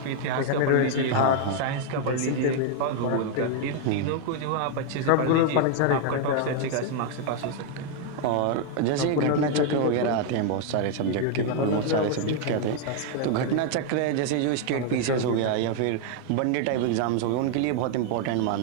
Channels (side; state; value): both; different; correlation 0.00